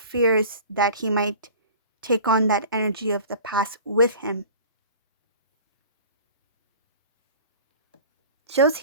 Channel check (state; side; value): inverted; both; correlation -0.42